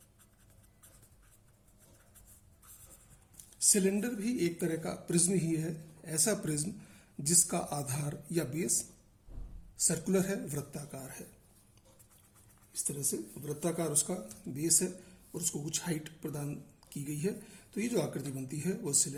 सिलेंडर भी एक तरह का प्रिज्म ही है, ऐसा प्रिज्म जिसका आधार या बेस सर्कुलर है, वृत्ताकार है। इस तरह से वृत्ताकार उसका बेस है और उसको कुछ हाइट प्रदान की गई है। तो ये जो आकृति बनती है वो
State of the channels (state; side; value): identical; both; correlation 1.00